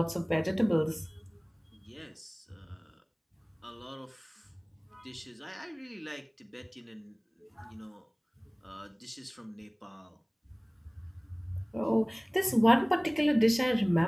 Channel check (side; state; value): both; identical; correlation 1.00